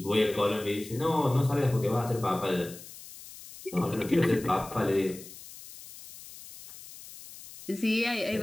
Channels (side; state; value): left; noise; hiss, 16 dB below the sound